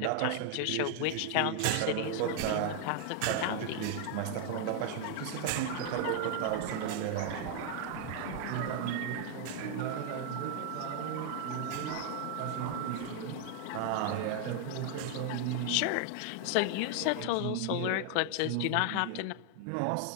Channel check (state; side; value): different; both; correlation 0.00